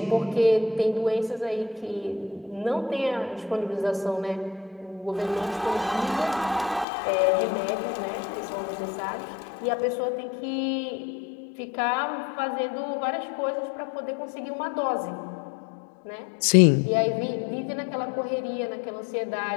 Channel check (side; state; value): right; drops out; at 6.9 s